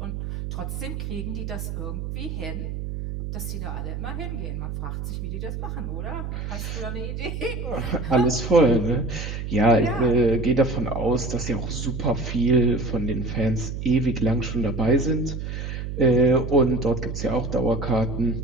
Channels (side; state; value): right; noise; hum, 5 dB below the sound